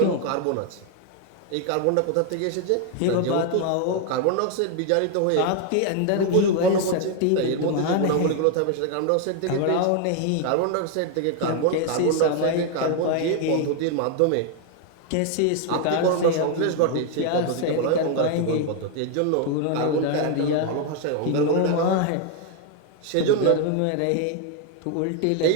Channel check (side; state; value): both; different; correlation 0.00